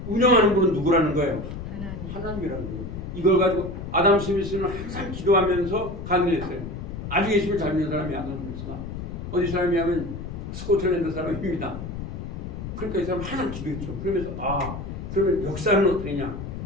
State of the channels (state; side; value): noise; left; rumble, 8 dB below the sound